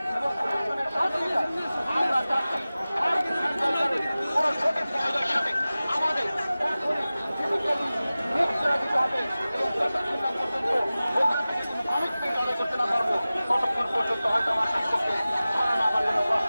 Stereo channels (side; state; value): both; inverted; correlation -0.97